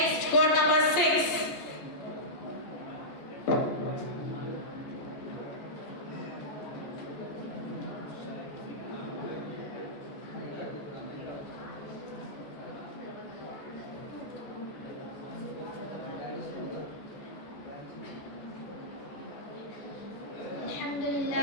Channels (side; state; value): right; late; 14 ms